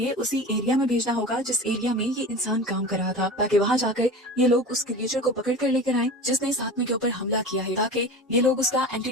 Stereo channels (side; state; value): both; normal; correlation 0.32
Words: उसी एरिया में भेजना होगा जिस एरिया में ये इंसान काम कर रहा था, ताकि वहाँ जाकर ये लोग उस क्रिएचर को पकड़ कर लेकर आए जिसने इस आदमी के ऊपर हमला किया है, ताकि ये लोग उसका